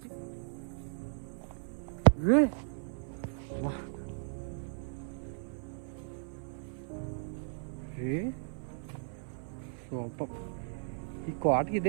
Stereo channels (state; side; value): silent; left; 54 dB below the other